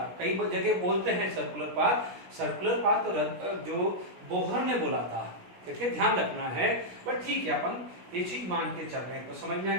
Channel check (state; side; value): late; left; 17 ms